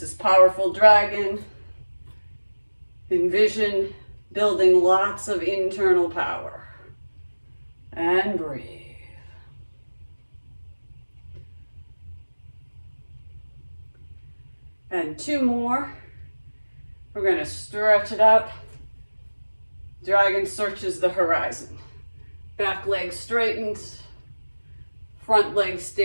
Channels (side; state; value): both; inverted; correlation -1.00